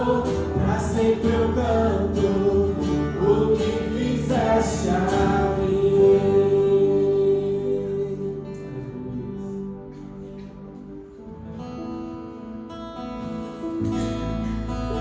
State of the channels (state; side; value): identical; both; correlation 1.00